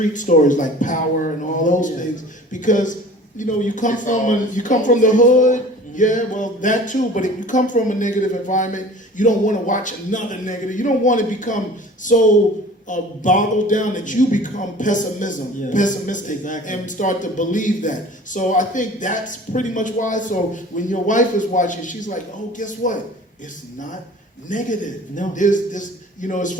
stories like Power and all those things because you come from the hood. Yeah, well, that too. But if you come from a negative environment, you don't want to watch another negative. You don't want to become so boggled down that you become pessimistic, exactly. And start to believe that. So I think that's pretty much why. So when your wife is watching, she's like, "Oh, guess what? It's not negative. No, there's this. It's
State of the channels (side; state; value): both; normal; correlation 0.44